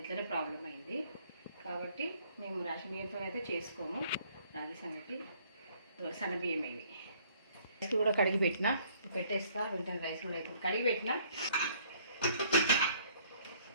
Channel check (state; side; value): inverted; both; correlation -0.61